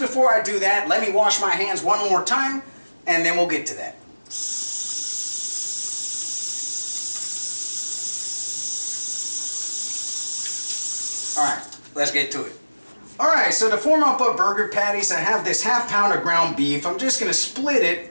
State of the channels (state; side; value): inverted; both; correlation -1.00